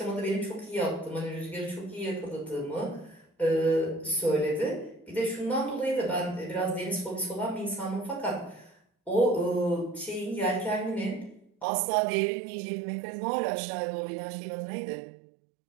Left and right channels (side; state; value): left; drops out; at 11.7 s